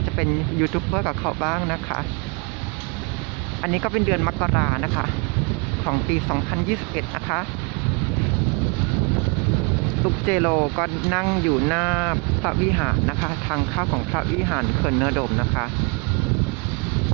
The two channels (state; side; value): quieter; left; 31.4 dB